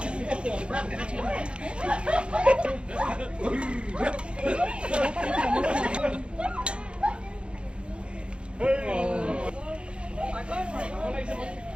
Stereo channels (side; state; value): left; late; 0.057 ms